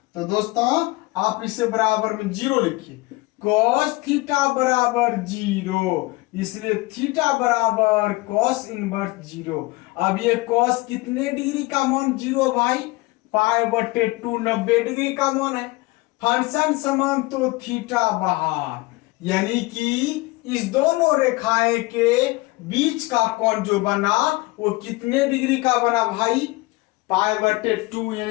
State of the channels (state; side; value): quieter; right; 22.3 dB